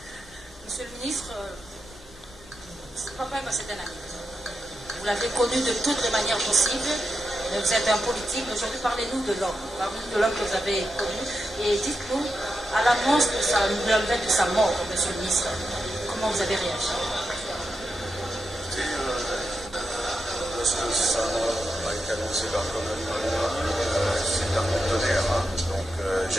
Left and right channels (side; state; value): both; normal; correlation 0.87